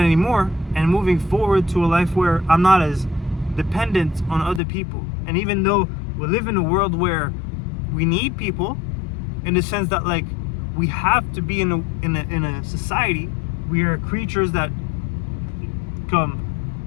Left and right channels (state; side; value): drops out; right; at 4.6 s